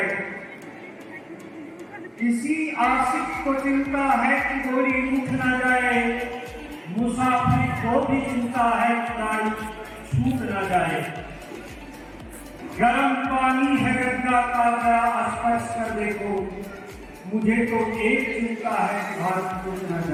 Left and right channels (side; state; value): both; identical; correlation 1.00